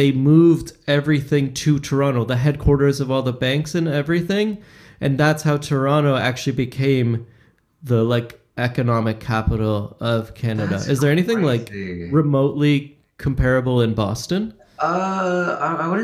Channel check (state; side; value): identical; both; correlation 1.00